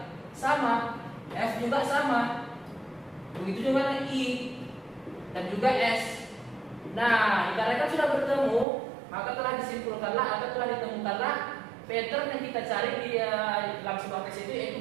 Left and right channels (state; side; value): drops out; left; at 8.7 s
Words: sama, F juga sama. Begitu juga I dan juga S. Nah, dikarenakan sudah bertemu, maka telah disimpulkanlah atau telah ditemukanlah pattern yang kita cari di dalam sebuah teks itu, yaitu